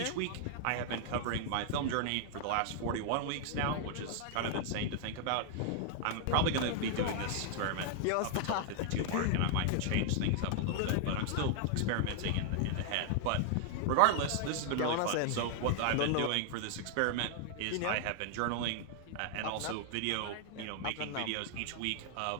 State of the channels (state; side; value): different; both; correlation 0.00